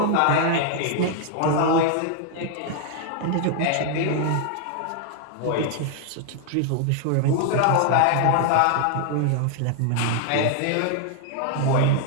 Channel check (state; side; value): different; both; correlation 0.00